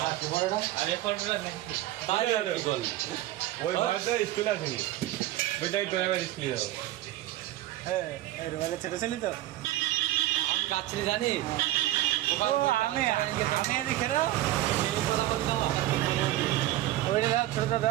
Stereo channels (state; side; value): quieter; left; 15.4 dB